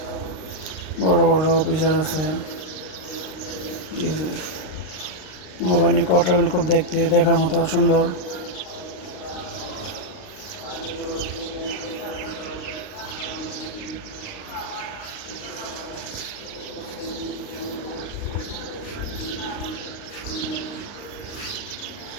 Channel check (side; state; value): right; late; 39 ms